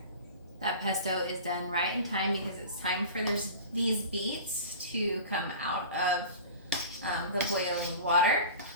That pesto is done right in time because it's time for these beets to come out of the boiling water.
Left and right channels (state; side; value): inverted; both; correlation -0.36